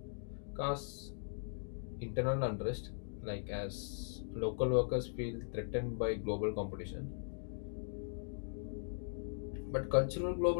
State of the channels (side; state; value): right; silent; digital silence